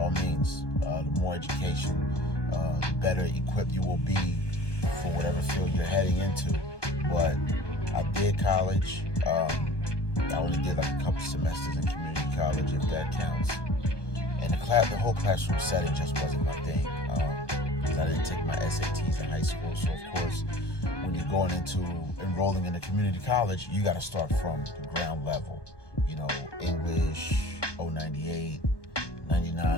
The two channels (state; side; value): late; right; 1.2 ms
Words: means, the more education, the better equipped you will be for whatever field you're heading into. But I did college. I only did like a couple semesters in community college, if that counts. And the whole classroom setting just wasn't my thing. Because I didn't take my SATs in high school. So, of course, when you're going into enrolling in a community college, you got to start from the ground level. English, 098,